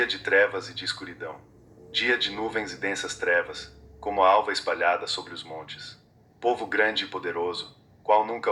de trevas e de escuridão. Dia de nuvens e densas trevas, como a alva espalhada sobre os montes. Povo grande e poderoso, qual nunca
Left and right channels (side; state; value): both; identical; correlation 1.00